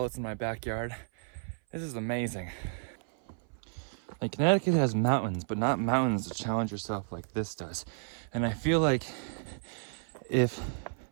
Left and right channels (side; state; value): left; silent; 56 dB below the other